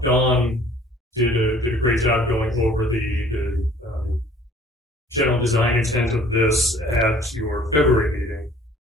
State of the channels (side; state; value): both; normal; correlation 0.54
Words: Dawn did a great job going over the general design intent of this at your February meeting.